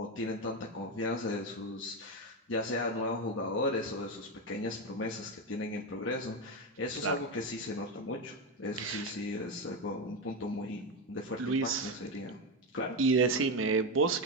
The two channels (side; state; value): both; normal; correlation 0.12